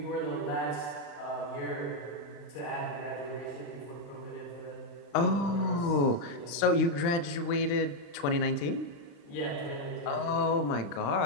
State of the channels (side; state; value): right; late; 35 ms